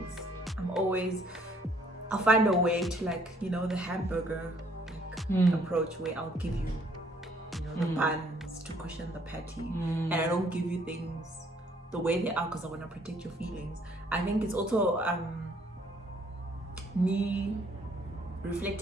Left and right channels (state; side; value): normal; both; correlation 0.63